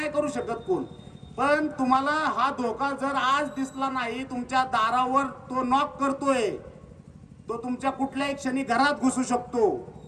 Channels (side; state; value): both; identical; correlation 1.00